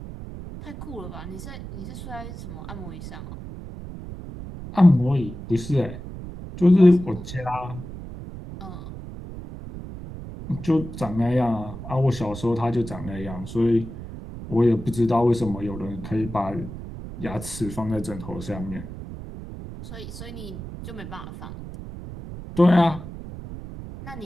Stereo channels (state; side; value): noise; right; rumble, 11 dB below the sound